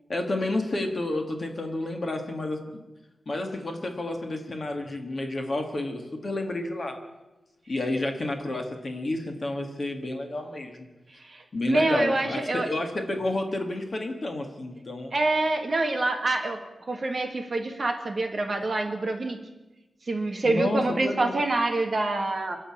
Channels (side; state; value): both; normal; correlation 0.92